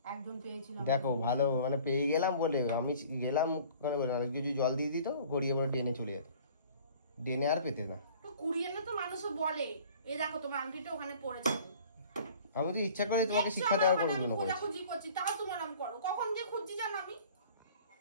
একজন পেয়েছিল। দেখো ভালো মানে পেয়ে গেলাম বলে আমি গেলাম ওখানে বলে, আর কিছু জল দিয়ে দিত, গড়িয়ে পড়ে ড্রেনে চলে যেত, ড্রেনে আর পেতে না। তো কুড়িয়ে না তো মানুষও বলে, এই দেখো তোমার আংটিটা ওখানে পড়েছে। আমি তো ইচ্ছা করে তোমাকে শিক্ষা দেওয়ার করে জন্য করেছি, খোঁজাখুঁজি করছি, তাও তোমার আমি করো। কখন যে খুঁজছি জানো আমি?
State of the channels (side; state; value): both; inverted; correlation -0.49